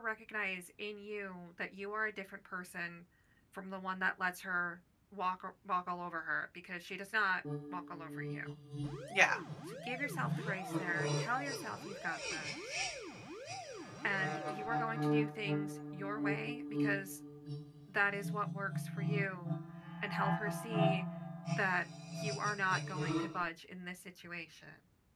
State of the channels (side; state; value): both; identical; correlation 1.00